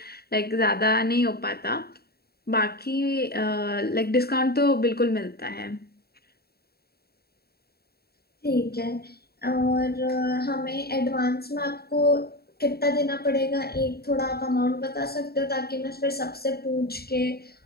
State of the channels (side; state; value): right; late; 0.45 ms